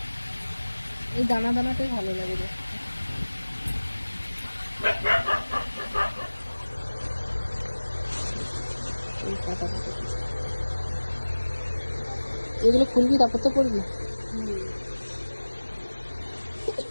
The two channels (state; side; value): inverted; both; correlation -1.00